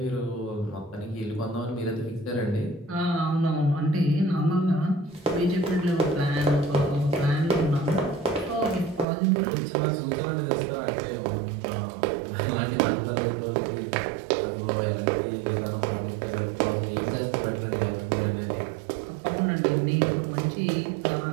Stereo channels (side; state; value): left; drops out; at 9.1 s